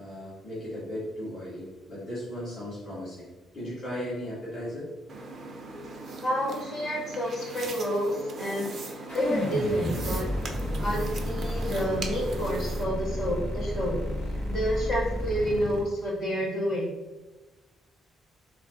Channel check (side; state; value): both; normal; correlation 0.77